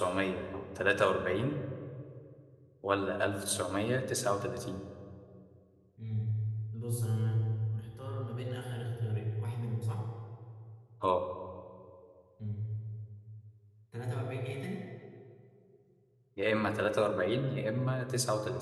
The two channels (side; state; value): both; identical; correlation 1.00